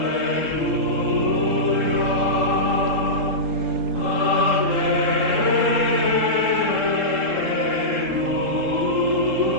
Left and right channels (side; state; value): left; late; 3.8 ms